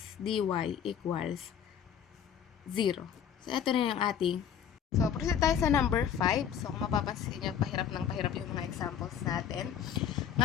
dy equals 0. So, ito na yung ating. So, proceed tayo sa number 5. So, kung mapapansin nyo, pahirap yung mga examples natin.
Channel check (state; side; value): quieter; right; 8.5 dB